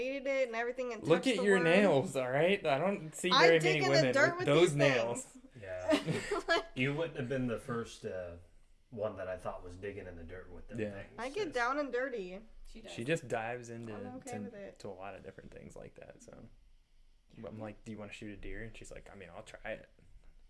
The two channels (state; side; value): identical; both; correlation 1.00